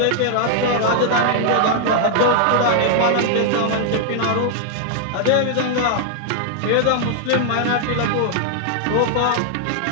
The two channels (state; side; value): different; both; correlation 0.00